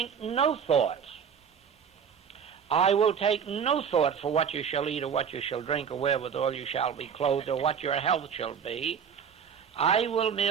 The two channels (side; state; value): left; quieter; 7.3 dB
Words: no thoughts. I will take no thought for what you shall eat or what you shall drink or wherewithal you shall be clothed or what your health shall be. I will